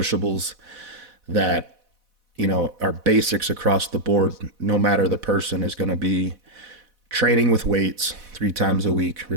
that, are basics across the board, no matter the person, is going to be training with weights 3 times a week,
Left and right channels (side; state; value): left; late; 4.1 ms